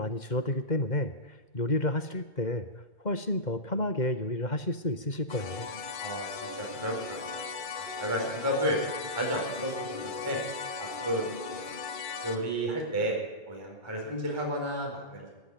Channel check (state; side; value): late; right; 2.3 ms